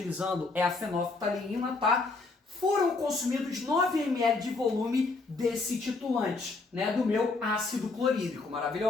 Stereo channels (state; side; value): quieter; right; 3.7 dB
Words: é a fenolftaleína, tá? Foram consumidos 9 ml de volume desse titulante, né, do meu ácido clorídrico,